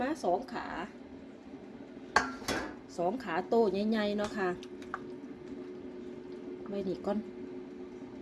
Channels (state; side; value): identical; both; correlation 1.00